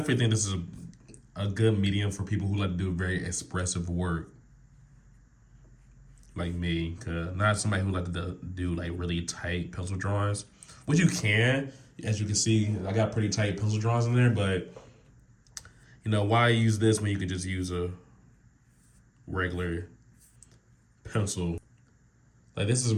think this is a good medium for people who like to do very expressive work, like me. Cause not somebody who like to do like really tight pencil drawings, which you can. As you can see, I got pretty tight pencil drawings in there, but you know, why use this when you could just use a regular pencil? Like this is a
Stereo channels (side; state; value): both; identical; correlation 1.00